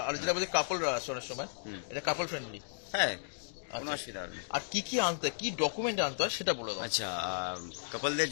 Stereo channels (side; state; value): right; silent; digital silence